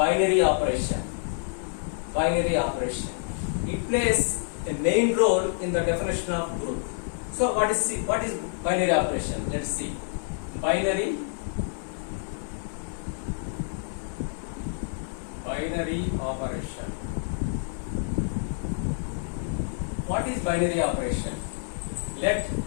operation. Binary operation. It plays a main role in the definition of group. So, what is binary operation? Let's see. Binary operation. What is binary operation? Let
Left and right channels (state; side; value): silent; right; digital silence